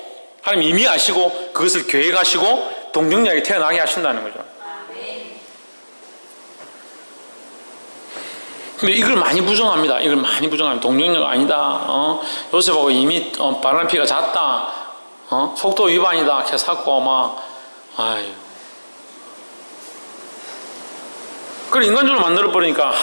하나님 이미 아시고 그것을 계획하시고 동정녀에게 태어나게 하신다는 거죠. 근데 이걸 많이 부정합니다. 동정녀가 아니다. 요셉하고 이미 바람 피가 잦다. 속도 위반이다. 캐사고 막 아유. 그걸 인간적으로 만들어버리니까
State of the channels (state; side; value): inverted; both; correlation -1.00